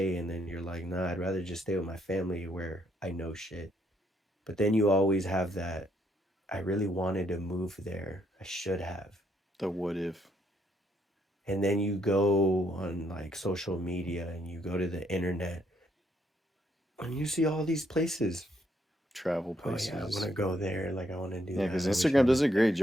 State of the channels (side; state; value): both; normal; correlation 0.73